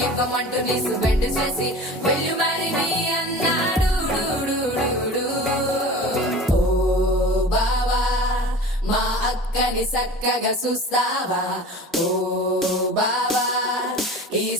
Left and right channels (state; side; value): normal; both; correlation 0.37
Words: నీసు బెండ్ చేసి వెళ్ళు మరి నీ అన్నాడు ఓ బావా మా అక్కని చక్కగా చూస్తావా ఓ బావా ఈ